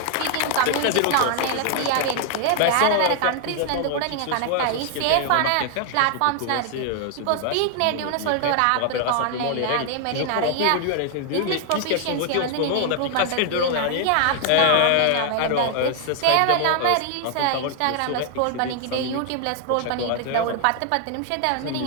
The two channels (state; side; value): different; both; correlation 0.00